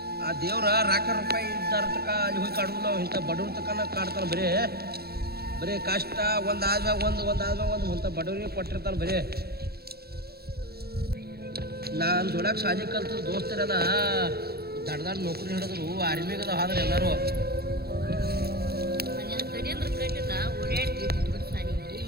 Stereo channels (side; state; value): left; late; 0.46 ms